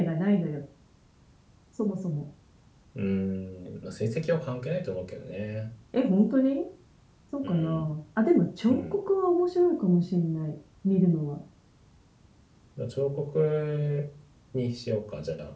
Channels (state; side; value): identical; both; correlation 1.00